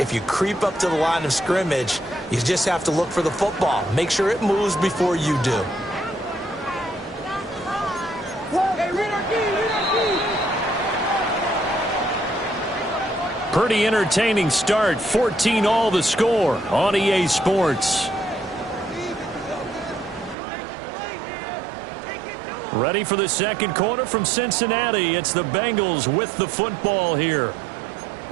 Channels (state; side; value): drops out; left; at 20.4 s